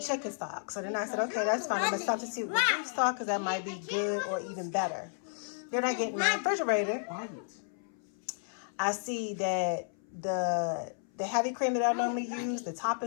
stock. So then I said, okay, that's fine. I'm going to substitute with beef stock because that might be good or even better. Then I get in my refrigerator. I see that the heavy cream that I normally use, the top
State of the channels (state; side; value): silent; right; 56 dB below the other